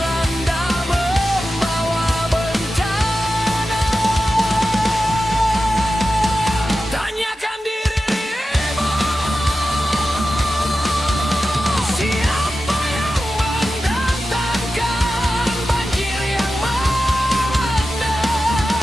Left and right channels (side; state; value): both; normal; correlation 0.92